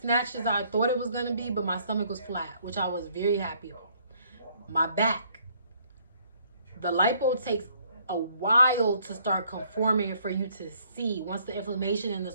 as I thought it was going to be, but my stomach was flat, which I was very happy about. My back, the lipo takes a while to start conforming for you to see. Once the inflammation and the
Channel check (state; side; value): inverted; both; correlation -0.64